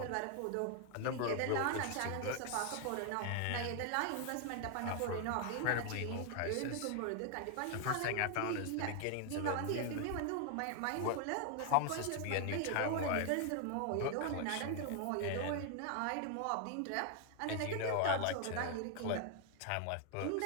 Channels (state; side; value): different; both; correlation 0.00